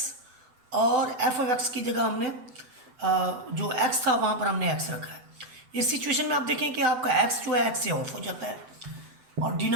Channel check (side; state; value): left; late; 7.9 ms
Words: और एफ ऑफ एक्स की जगह हमने जो x था वहाँ पर हमने x रखा है। इस सिचुएशन में आप देखें कि आपका x जो है x से ऑफ हो जाता है और